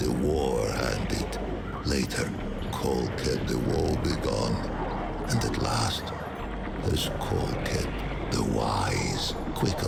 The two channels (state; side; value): identical; both; correlation 1.00